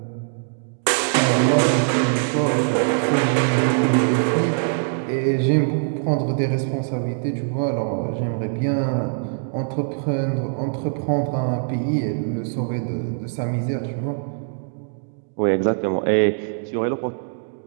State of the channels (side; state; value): left; silent; digital silence